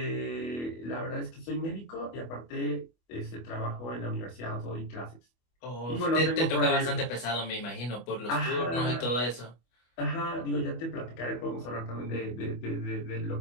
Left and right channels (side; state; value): right; late; 25 ms